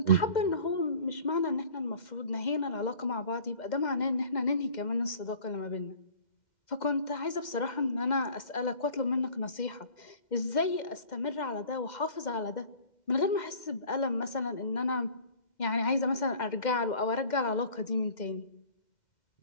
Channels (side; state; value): right; late; 2.1 ms